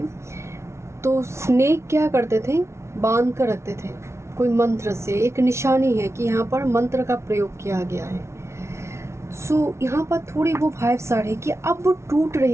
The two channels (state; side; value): late; left; 0.13 ms